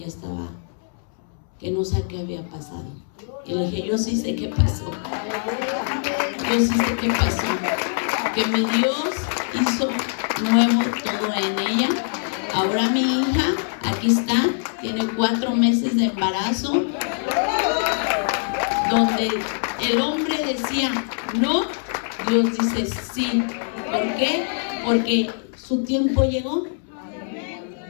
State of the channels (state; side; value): silent; right; 63 dB below the other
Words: estaba, que no sé qué había pasado. Y le dije: yo sí sé qué pasó. Yo sí sé qué pasó. Que mi Dios hizo nuevo todo en ella. Ahora mi hija, aquí está, tiene 4 meses de embarazo, donde el hombre decía no, Dios dice sí. ¿Por qué? Porque su tiempo llegó.